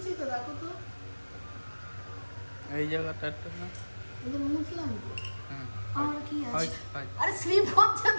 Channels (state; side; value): inverted; both; correlation -1.00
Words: তো, দেখো তো এই জায়গাটা একটু না। এই যে মুছলাম তো। হুম, আর কি আছে? হয়, হয়। আরে স্লিপ হচ্ছে